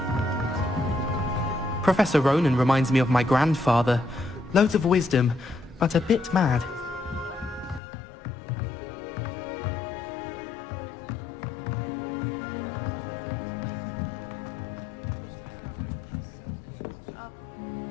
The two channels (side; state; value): right; drops out; at 7.8 s